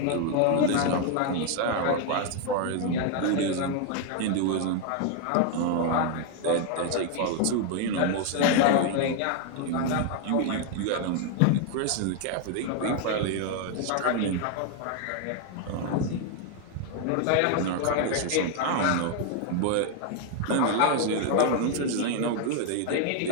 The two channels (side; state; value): both; different; correlation 0.01